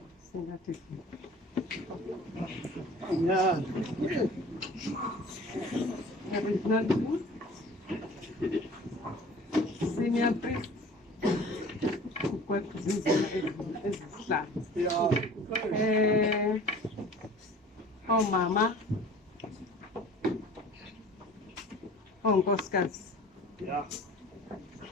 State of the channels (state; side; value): normal; both; correlation 0.45